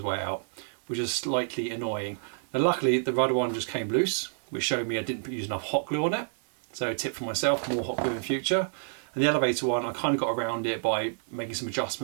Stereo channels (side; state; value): left; silent; 59 dB below the other